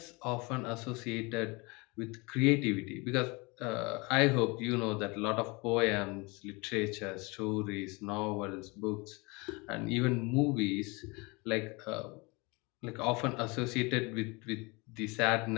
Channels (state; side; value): quieter; right; 27.1 dB